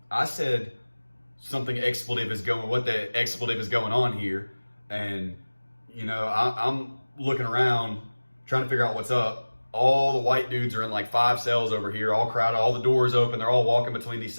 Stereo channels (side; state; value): both; inverted; correlation -1.00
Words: I said something expletive is going, what the expletive is going on here. And, you know, I'm looking around trying to figure out what's up. All the white dudes are in like 5 cells over here, all crowded, all the doors open. They're all walking between these